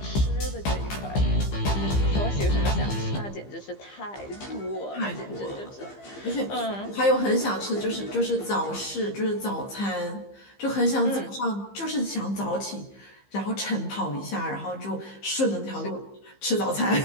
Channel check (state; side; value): late; right; 15 ms